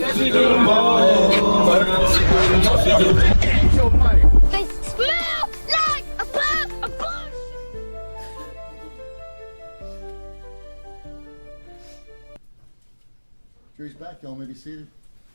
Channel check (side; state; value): both; inverted; correlation -1.00